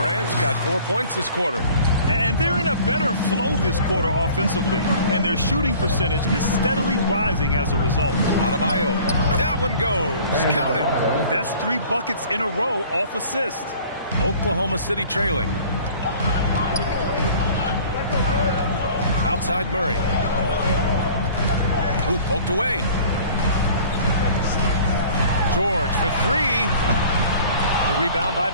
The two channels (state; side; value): inverted; both; correlation -0.48